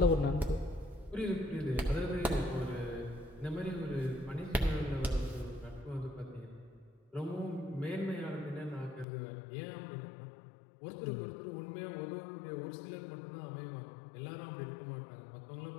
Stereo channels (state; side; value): drops out; right; at 9.1 s